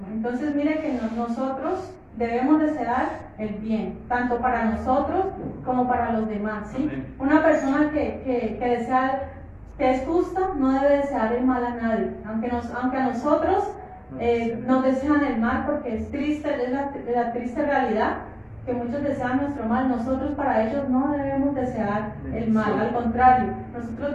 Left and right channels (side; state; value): both; identical; correlation 1.00